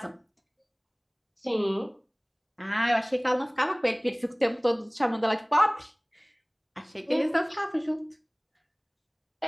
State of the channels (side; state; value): both; identical; correlation 1.00